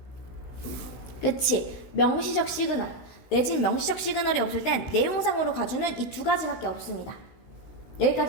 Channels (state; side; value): late; right; 16 ms